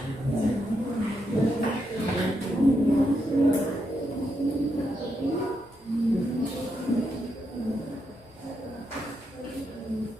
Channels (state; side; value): normal; both; correlation 0.82